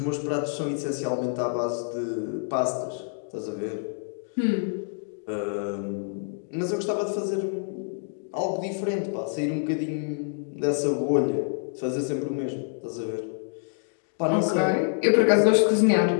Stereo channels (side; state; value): right; silent; digital silence